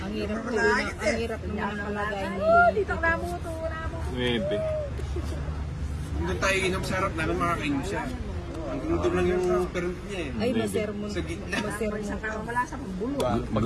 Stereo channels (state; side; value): identical; both; correlation 1.00